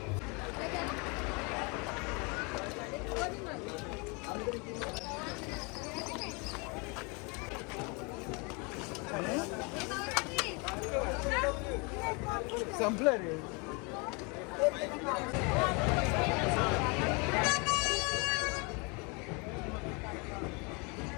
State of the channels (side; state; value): right; quieter; 30.8 dB